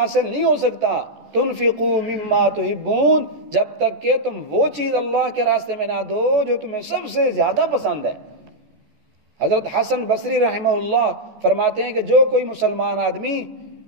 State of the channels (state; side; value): late; left; 14 ms